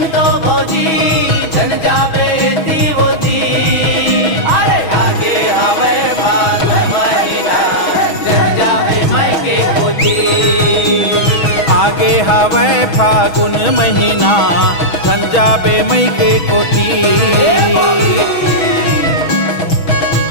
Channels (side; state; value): right; late; 6.2 ms